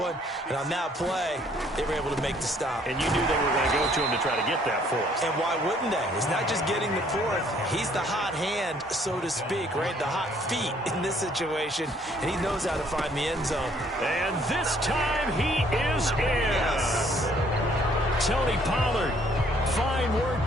And on that play, they were able to make the stop. And you knew they were going to go to him to try to get that 4th. And why wouldn't they? It's not just getting the 4th. He's the hot hand, so to speak, right? The hot feet in this situation. And he knows how to find the end zone. And this time he is in. Yes. Tony Pollard. Fine work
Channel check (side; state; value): both; normal; correlation 0.63